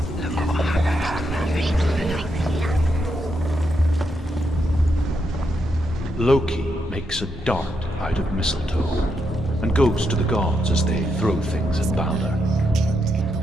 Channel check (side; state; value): both; normal; correlation 0.81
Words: Loki makes a dart out of mistletoe and goes to the gods as they throw things at Balder.